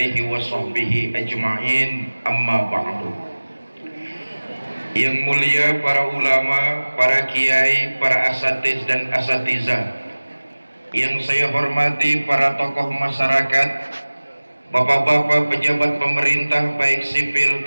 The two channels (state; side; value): inverted; both; correlation -1.00